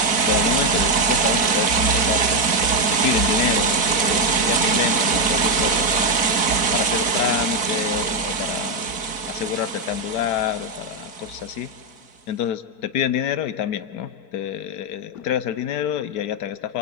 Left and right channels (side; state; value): right; late; 4.1 ms